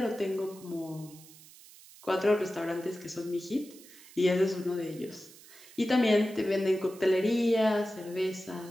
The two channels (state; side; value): noise; right; hiss, 21 dB below the sound